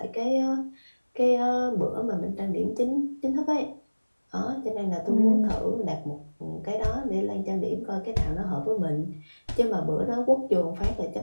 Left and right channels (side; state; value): both; inverted; correlation -1.00